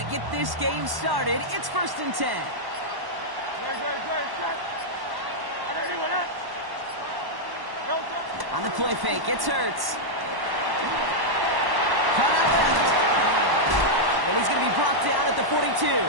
get this game started. It's 1st and 10. On the play fake, it's Hurts. Cut out left. And he's going to be brought down at the 42.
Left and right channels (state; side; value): late; left; 1.1 ms